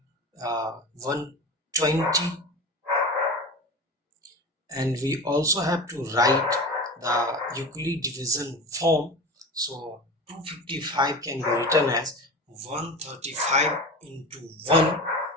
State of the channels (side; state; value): both; normal; correlation 0.30